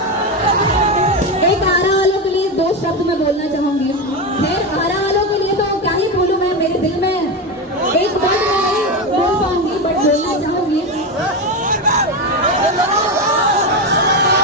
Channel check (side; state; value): both; normal; correlation 0.15